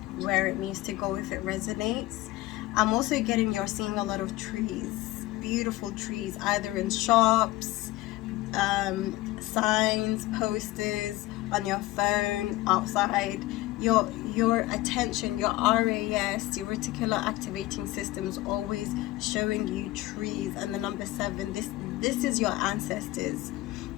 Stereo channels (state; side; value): quieter; right; 18.0 dB